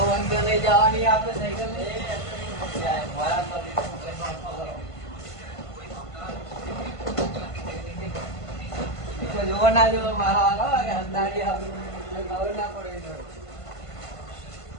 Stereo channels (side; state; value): right; late; 1.5 ms